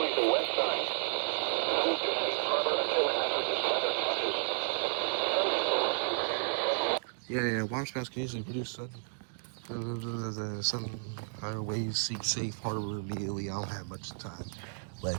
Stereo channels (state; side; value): silent; left; digital silence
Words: the west side. Move to Safe Harbor until hazardous weather passes. Yeah, water spouts can easily produce sun higher waves, seek safe harbor immediately. I don't have much time.